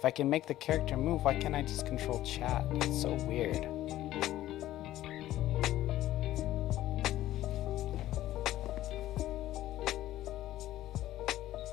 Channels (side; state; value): right; quieter; 14.3 dB